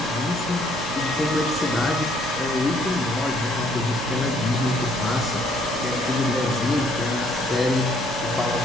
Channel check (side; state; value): both; normal; correlation 0.64